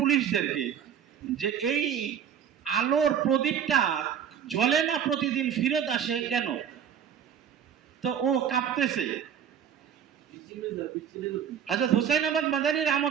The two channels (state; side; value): quieter; left; 8.6 dB